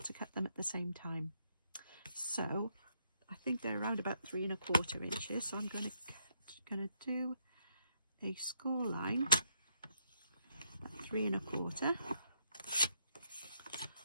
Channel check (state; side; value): inverted; both; correlation -0.75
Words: to cut them at the same time. So I think they're around about 3 1/4 inches. So I'm going to do a score line at 3 1/4.